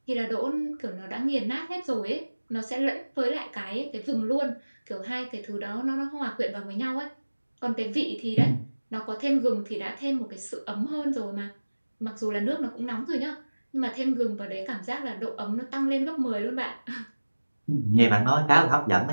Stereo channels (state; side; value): inverted; both; correlation -1.00